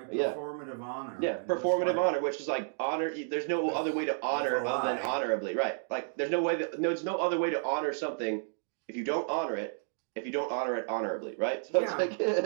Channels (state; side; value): silent; left; digital silence